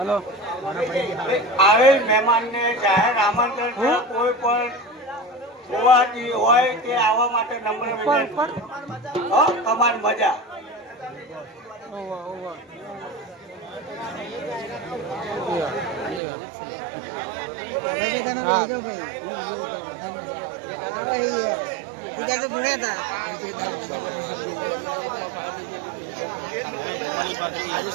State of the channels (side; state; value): left; drops out; at 16.2 s